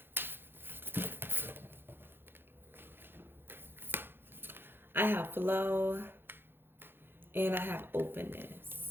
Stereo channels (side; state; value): left; late; 0.10 ms